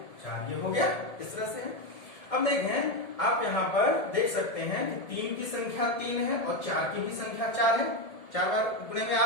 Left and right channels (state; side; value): late; right; 1.7 ms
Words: 4, ये हो गया। इस तरह से है। अब देखें आप यहाँ पर देख सकते हैं कि 3 की संख्या 3 है और 4 की भी संख्या 4 है, 4 बार गुणे में आ